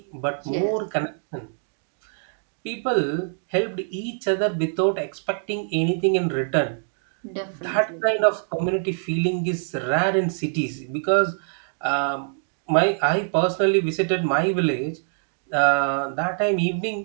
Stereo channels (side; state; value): left; silent; digital silence